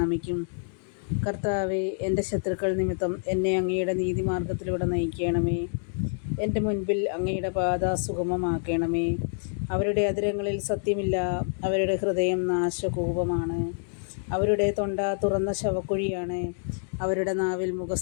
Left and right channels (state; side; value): silent; right; digital silence